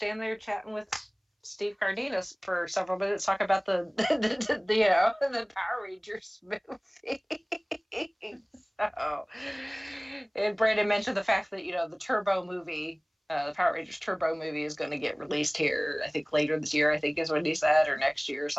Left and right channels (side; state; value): both; identical; correlation 1.00